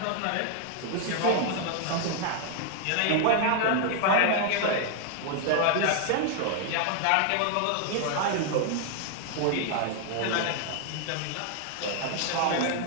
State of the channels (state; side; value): different; both; correlation 0.00